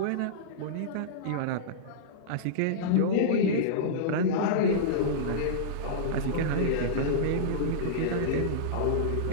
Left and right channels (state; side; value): different; both; correlation -0.04